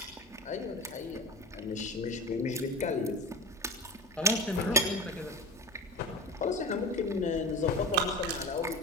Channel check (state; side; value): normal; both; correlation 0.28